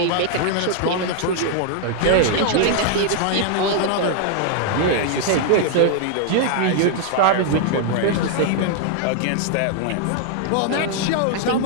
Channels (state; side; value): different; both; correlation 0.00